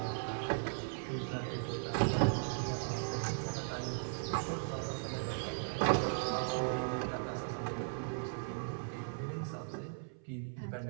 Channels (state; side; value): silent; left; 53 dB below the other